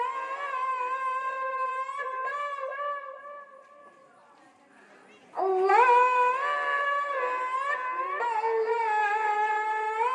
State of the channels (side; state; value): both; identical; correlation 1.00